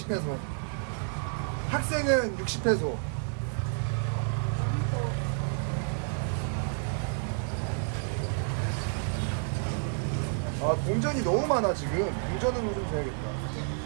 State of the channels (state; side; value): silent; left; 58 dB below the other